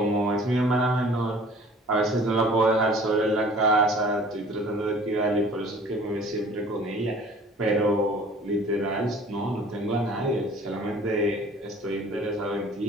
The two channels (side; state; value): both; normal; correlation 0.49